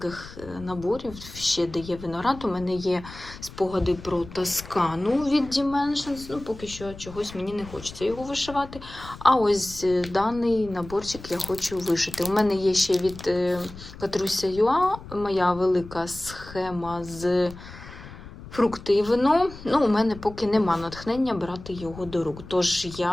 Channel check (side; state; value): left; noise; rumble, 15 dB below the sound